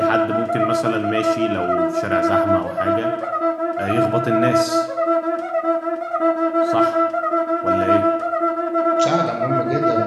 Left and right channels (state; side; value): identical; both; correlation 1.00